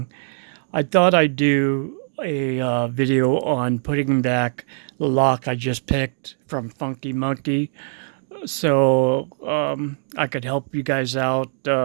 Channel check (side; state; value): left; silent; digital silence